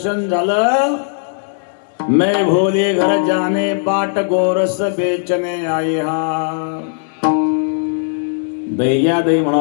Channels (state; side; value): silent; right; digital silence